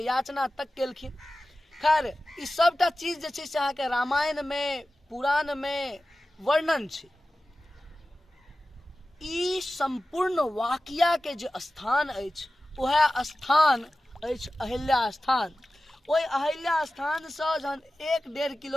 याचना तक केलखिन। खैर ई सबटा चीज जे छै से अहाँके रामायण में, पुराण में वर्णन छै। ई संपूर्ण वाकिया के जे स्थान अछि वह स्थान अछि अहिल्या स्थान। ओहि अहिल्या स्थान से जहन 1-1.5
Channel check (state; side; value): normal; both; correlation 0.95